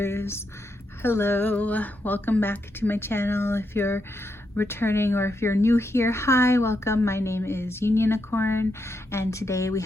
Hello, welcome back to my channel. If you're returning or if you're new here, hi, welcome. My name is Unionicorn, and today we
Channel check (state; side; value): normal; both; correlation 0.82